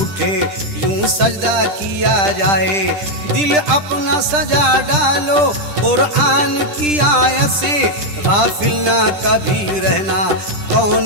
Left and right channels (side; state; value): left; late; 10 ms